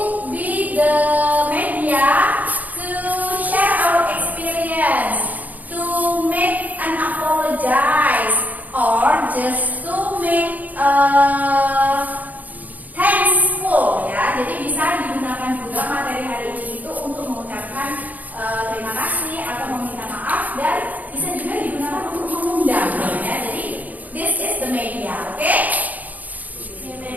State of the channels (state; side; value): late; left; 0.079 ms